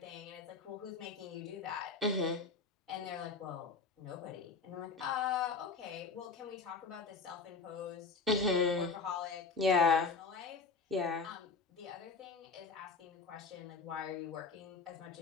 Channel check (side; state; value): right; quieter; 4.7 dB